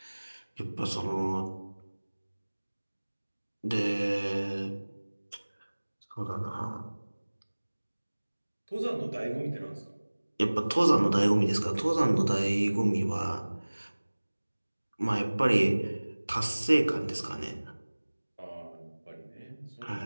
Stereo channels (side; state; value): both; inverted; correlation -1.00